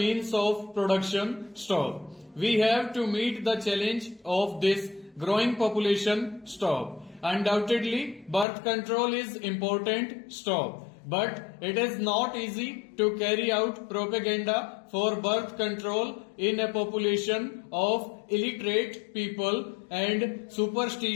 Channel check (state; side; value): drops out; right; at 8.5 s